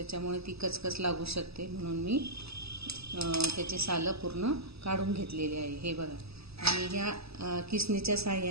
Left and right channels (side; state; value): left; late; 0.78 ms